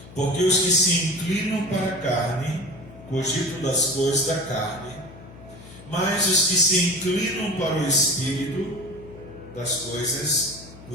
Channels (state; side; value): noise; left; hum, 18 dB below the sound